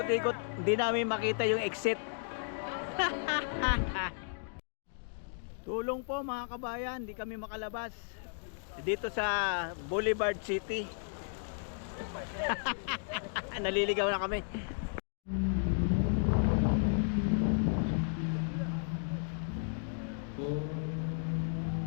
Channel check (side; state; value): right; silent; digital silence